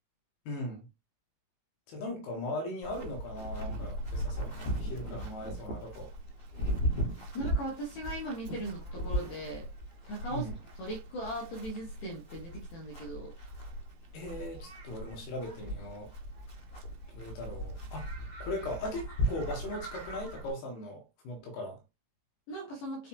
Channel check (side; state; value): right; late; 18 ms